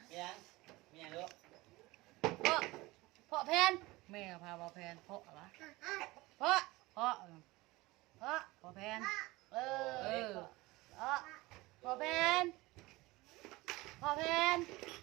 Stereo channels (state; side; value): quieter; left; 20.9 dB